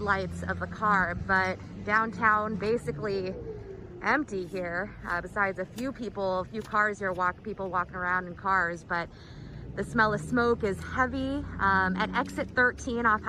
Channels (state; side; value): identical; both; correlation 1.00